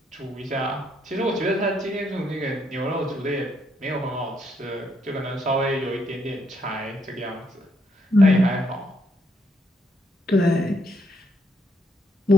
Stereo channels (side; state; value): both; normal; correlation 0.74